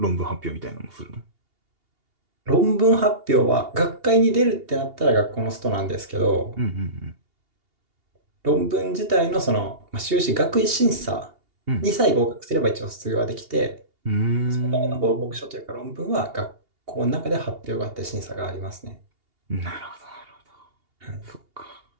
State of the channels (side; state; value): left; late; 2.8 ms